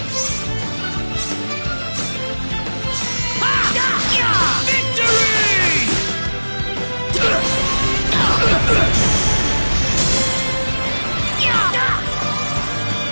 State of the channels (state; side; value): inverted; both; correlation -1.00